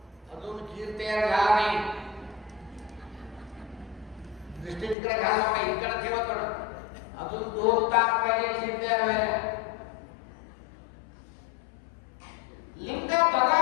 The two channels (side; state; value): right; drops out; at 5.0 s